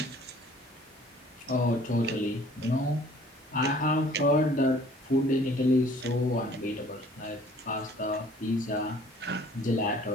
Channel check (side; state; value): both; normal; correlation 0.54